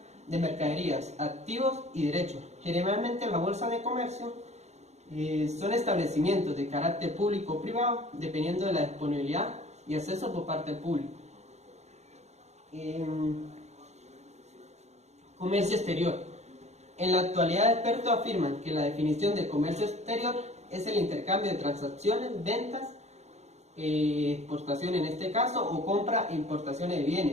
de mercaderías, activos y derechos. Generalmente la bolsa de comercio son establecimientos de carácter público o privado, dependiendo de la disponibilidad y acceso por parte del público. Comercio exterior. En la actualidad, expertos afirman que la definición de comercio exterior es el intercambio de transacciones, ventas exportación en este caso, o compra e importaciones de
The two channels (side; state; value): left; late; 0.32 ms